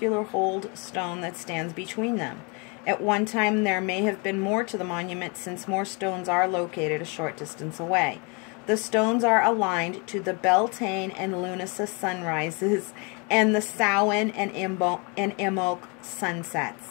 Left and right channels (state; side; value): quieter; right; 32.0 dB